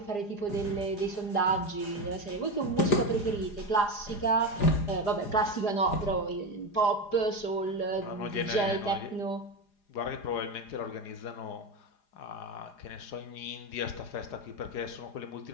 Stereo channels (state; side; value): late; right; 4.9 ms